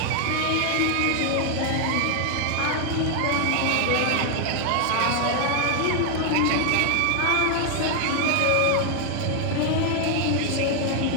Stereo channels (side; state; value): both; different; correlation 0.00